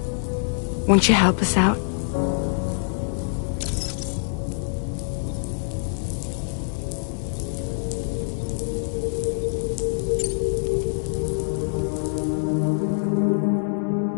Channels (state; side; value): silent; right; digital silence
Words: won't you help us out?